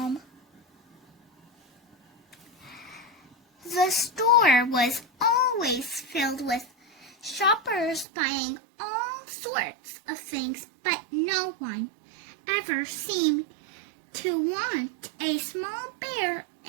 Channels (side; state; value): left; drops out; at 8.1 s